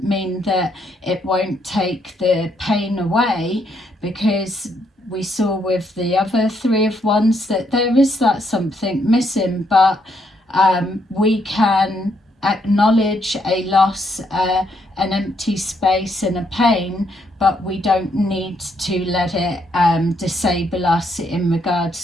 mean that it won't take the pain away, because we saw with the other Three of Wands that there is that something missing, but we can acknowledge a loss, an empty space and a pain, but we don't need to let it disable us in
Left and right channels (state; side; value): normal; both; correlation 0.74